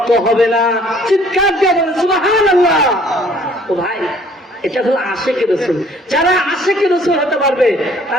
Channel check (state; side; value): normal; both; correlation 0.58